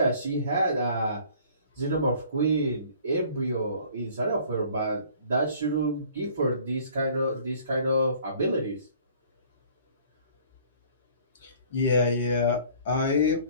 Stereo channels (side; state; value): both; inverted; correlation -0.53